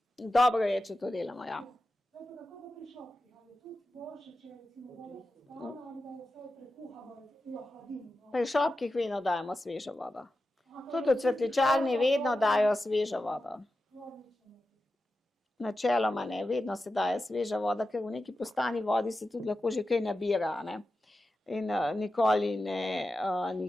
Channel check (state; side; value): normal; both; correlation 0.92